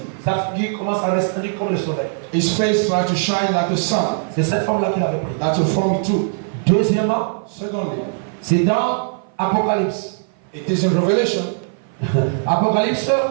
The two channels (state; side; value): silent; left; 56 dB below the other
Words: Sa figure commence à resplendir comme le soleil. His face tried to shine like the sun. C'est cette forme-là qu'il avait prise. That's a form he took. Deuxièmement, Secondly, c'est dans Apocalypse. it is in Revelation. Apocalypse,